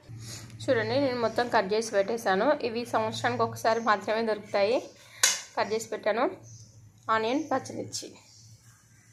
చూడండి, నేను మొత్తం కట్ చేసి పెట్టేశాను. ఇవి సంవత్సరానికి ఒకసారి మాత్రమే దొరుకుతాయి. కట్ చేసి పెట్టాను. ఆనియన్, పచ్చిమిర్చి,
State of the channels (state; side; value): identical; both; correlation 1.00